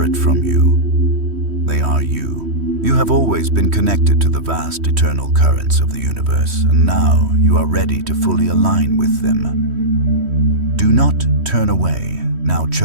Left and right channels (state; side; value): late; left; 3.1 ms